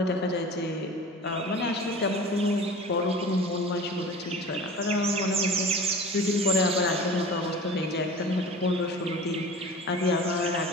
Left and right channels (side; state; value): both; normal; correlation 0.38